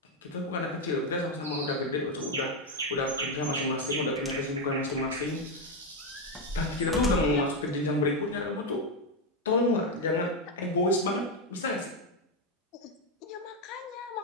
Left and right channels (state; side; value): normal; both; correlation 0.06